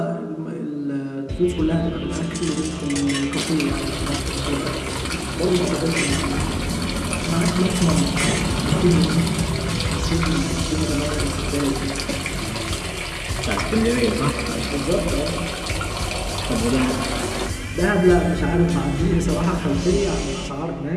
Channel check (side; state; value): both; identical; correlation 1.00